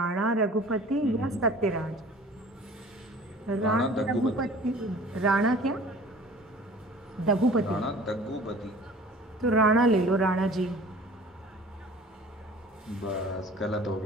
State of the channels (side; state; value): both; normal; correlation 0.45